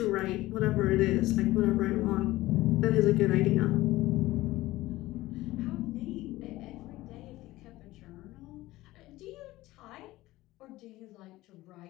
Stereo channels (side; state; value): right; quieter; 17.8 dB